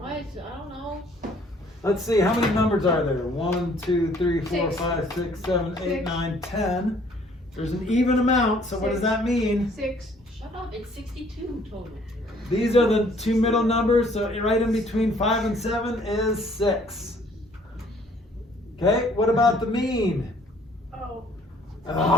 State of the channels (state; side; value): normal; both; correlation 0.59